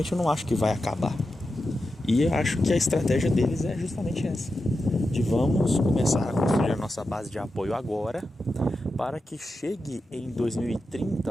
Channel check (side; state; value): both; normal; correlation 0.90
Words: eu não acho que vai acabar. E eu acho que a estratégia deles é justamente essa, de vamos começar a construir a nossa base de apoio agora, para que chegue em